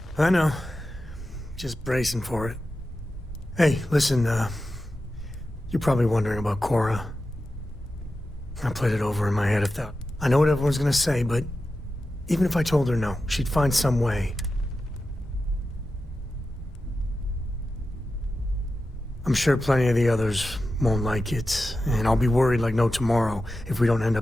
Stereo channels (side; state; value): both; normal; correlation 0.92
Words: I know. Just bracing for it. Hey, listen, you're probably wondering about Cora. I played it over in my head if that... I know what everyone's gonna say, but even if I told her no, she'd find some way. I'm sure plenty of the others won't like it, and I'll be worried like no tomorrow if we don't end